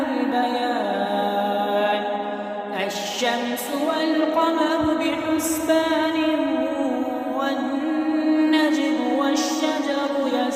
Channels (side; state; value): both; identical; correlation 1.00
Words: البيان. الشمس والقمر بحسبان والنجم والشجر